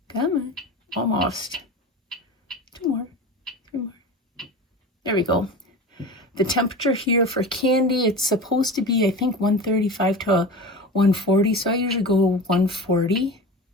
Come on. Almost. 2 more. 3 more. There we go. The temperature here for candy, it's supposed to be, I think, 135 to 140. So I usually go 140.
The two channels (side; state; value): both; normal; correlation 0.31